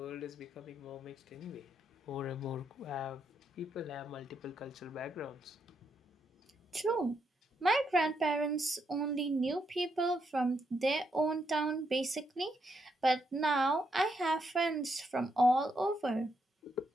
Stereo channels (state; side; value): normal; both; correlation 0.78